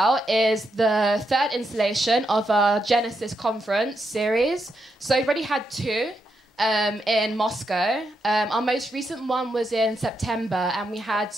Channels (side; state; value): both; normal; correlation 0.82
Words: is the third installation of our Genesis conference series. So we've already had two in Moscow. Our most recent one was in September, and we had